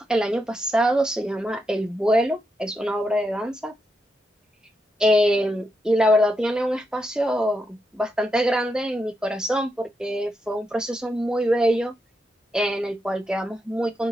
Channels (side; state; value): both; normal; correlation 0.83